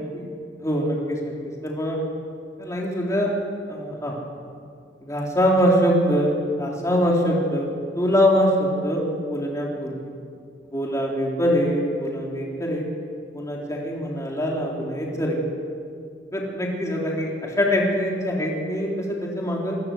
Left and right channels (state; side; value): normal; both; correlation 0.60